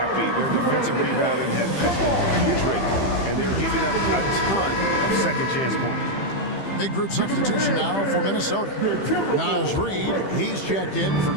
Their defensive rebounding has been putrid, and they're giving up a ton of second chance points. Big group substitution now for Minnesota. Naz Reid, he's checked in for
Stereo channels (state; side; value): late; right; 15 ms